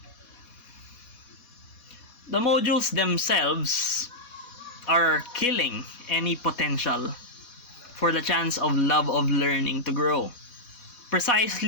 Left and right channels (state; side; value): late; right; 4.1 ms